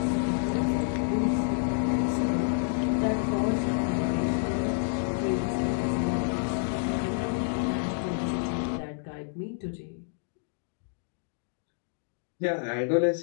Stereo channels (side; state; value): right; silent; digital silence